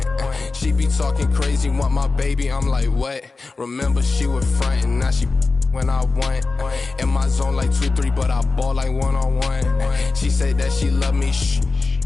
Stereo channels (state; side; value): quieter; right; 3.9 dB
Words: She be talking crazy, want my baby, I'm like, what? Remember she was frontin', now she when I want. In my zone like 2-3, but I ball like one-on-one. She said that she love me,